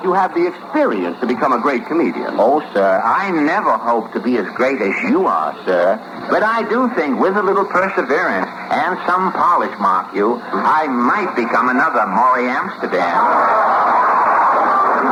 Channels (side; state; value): both; identical; correlation 1.00